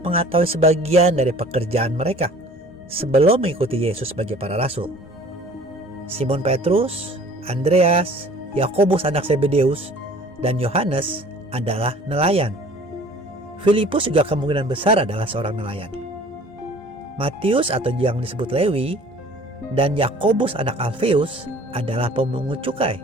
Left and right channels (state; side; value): normal; both; correlation 0.49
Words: mengetahui sebagian dari pekerjaan mereka sebelum mengikuti Yesus sebagai para rasul. Simon Petrus, Andreas, Yakobus anak Zebedeus, dan Yohanes adalah nelayan. Filipus juga kemungkinan besar adalah seorang nelayan. Matius atau yang disebut Lewi dan Yakobus anak Alfeus adalah pemungut cukai.